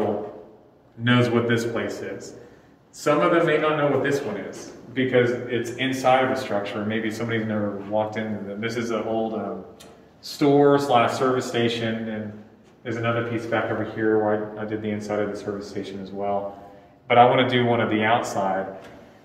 knows what this place is. Some of them may not know what this one is because it's inside of a structure. Maybe somebody's never walked in. This is an old store/service station, and there's another piece back over here where I did the inside of the service station as well. But I want to do one of the outside.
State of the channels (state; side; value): identical; both; correlation 1.00